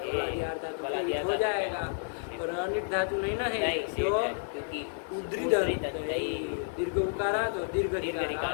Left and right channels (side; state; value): right; silent; 57 dB below the other